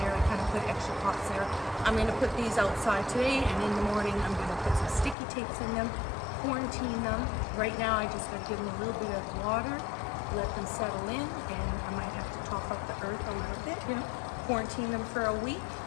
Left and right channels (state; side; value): drops out; right; at 5.2 s